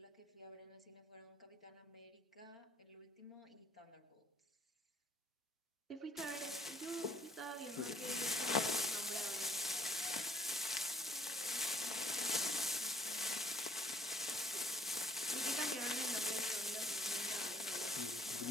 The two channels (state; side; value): normal; both; correlation 0.63